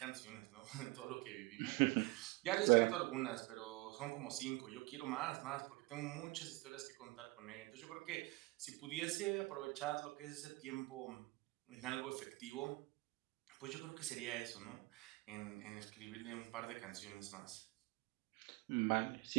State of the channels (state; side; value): quieter; left; 22.8 dB